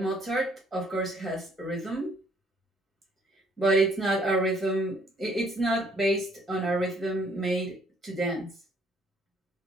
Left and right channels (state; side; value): normal; both; correlation 0.64